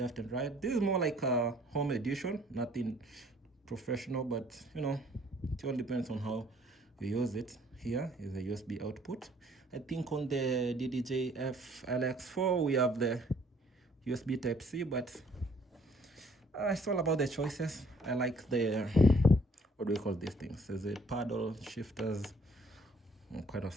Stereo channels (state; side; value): normal; both; correlation 0.60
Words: and right. This is more like a home edition, nothing professional, but you know, it all depends on how you use it. Here is the USB output. I think on the DDJ LX4 we have the USB Type-C, but it's all about the choices. I like the, what do we call these things? There's a paddle, shifters, kind of